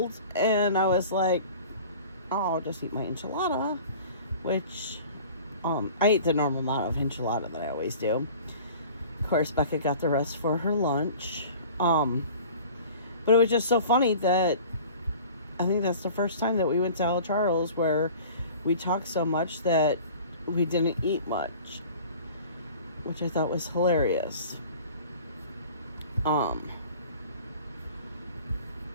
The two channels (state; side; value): inverted; both; correlation -0.43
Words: and I was like, oh, I'll just eat my enchilada, which, I ate the normal amount of enchilada that I always do. Of course, Becca got the rest for her lunch. But it was just so funny that I think that's the first time that we went to El Charles where we talked so much that we didn't eat much, which I thought was hilarious.